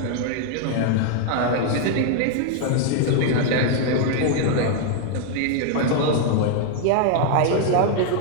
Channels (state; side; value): different; both; correlation 0.00